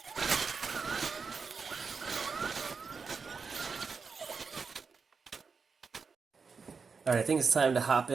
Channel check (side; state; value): left; quieter; 5.2 dB